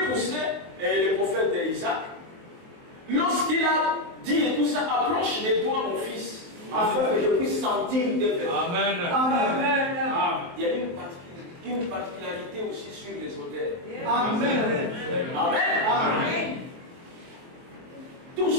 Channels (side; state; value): left; late; 23 ms